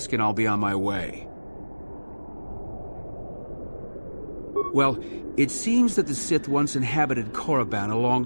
and I'll be on my way. Well, it seems that the Sith once inhabited Korriban a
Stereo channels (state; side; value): inverted; both; correlation -1.00